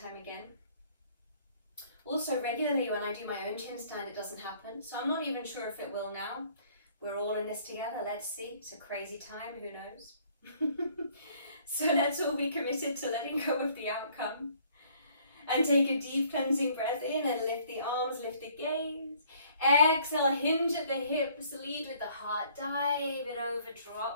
again. Also, regularly when I do my own chin stand, it doesn't happen. So I'm not even sure if it will now. We're all in this together. Let's see. It's a crazy time. Who knows? So let's all be committed to letting go of the outcome. And take a deep cleansing breath in and lift the arms, lift the gaze. Exhale, hinge at the hips, lead with the heart. Dive it over,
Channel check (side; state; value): both; inverted; correlation -0.60